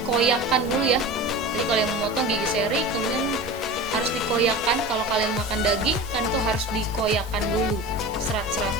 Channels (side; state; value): both; normal; correlation 0.32